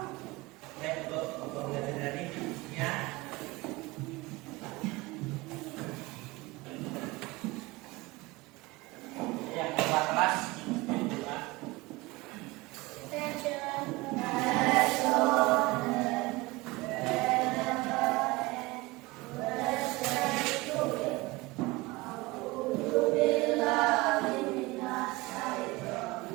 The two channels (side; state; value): left; quieter; 22.1 dB